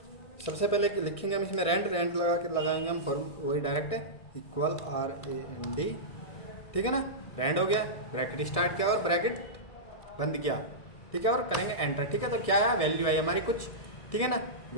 सबसे पहले लिखेंगे हम इसमें रैंड रैंड लगा के लगाएंगे हम वही डायरेक्ट इक्वल RAND। ठीक है ना। रैंड हो गया, ब्रैकेट स्टार्ट किया और ब्रैकेट बंद किया। ठीक है, और करेंगे एंटर। ठीक है, तो क्या है वैल्यू आई हमारी कुछ। ठीक है ना।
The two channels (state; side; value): late; right; 1.6 ms